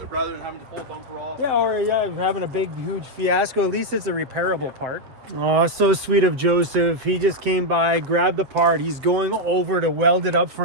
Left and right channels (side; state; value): left; late; 7.8 ms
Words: Rather than having to pull a bumper off. Yeah, or having a big, huge fiasco. At least it's a repairable part. Oh, so sweet of Joseph. He just came by, grabbed the part. He's going over to weld it up for